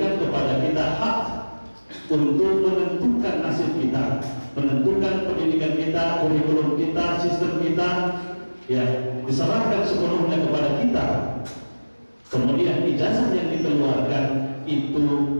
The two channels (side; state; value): both; inverted; correlation -1.00